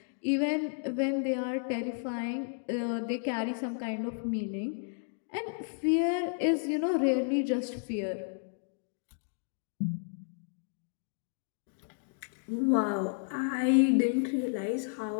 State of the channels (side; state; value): right; silent; digital silence